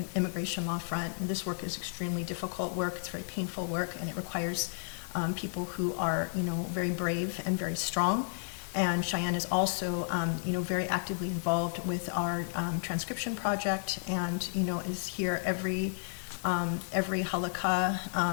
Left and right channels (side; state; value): right; silent; digital silence